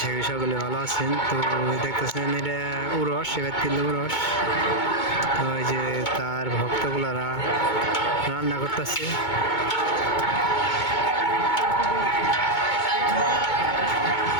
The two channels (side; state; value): right; late; 2.2 ms